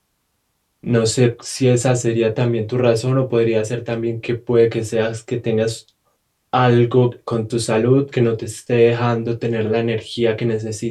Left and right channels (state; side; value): identical; both; correlation 1.00